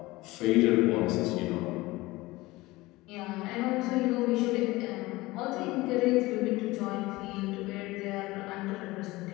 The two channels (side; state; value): right; quieter; 20.2 dB